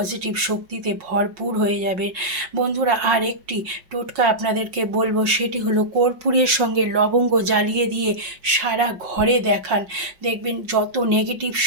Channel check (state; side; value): late; left; 5.5 ms